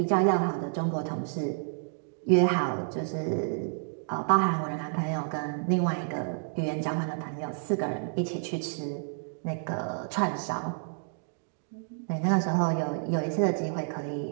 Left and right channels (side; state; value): left; silent; digital silence